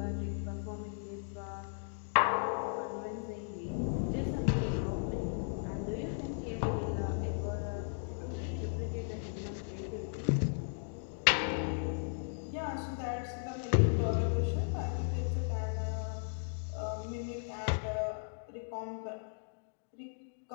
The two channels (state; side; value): silent; right; digital silence